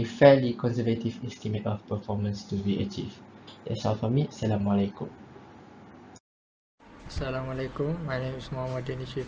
fairly conservative estimate of performance to be achieved. That's all from me. Assalamualaikum. Assalamualaikum, my name is Muhammad Danish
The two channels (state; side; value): identical; both; correlation 1.00